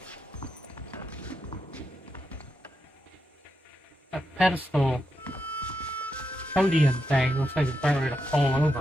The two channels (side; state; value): both; normal; correlation 0.85